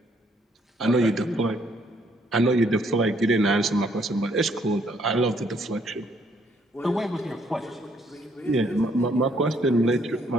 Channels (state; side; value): normal; both; correlation 0.68